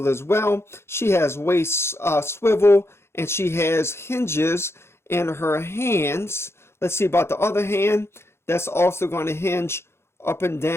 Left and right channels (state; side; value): late; right; 0.12 ms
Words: as well. She has waist swivel, and she has hinges in her hands. Let's see about the other hand. That's also going to hinge up and